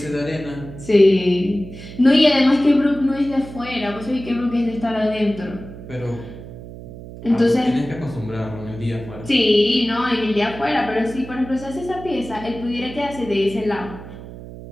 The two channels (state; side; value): noise; right; hum, 14 dB below the sound